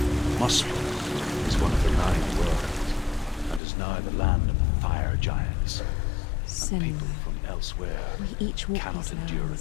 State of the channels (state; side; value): drops out; right; at 3.6 s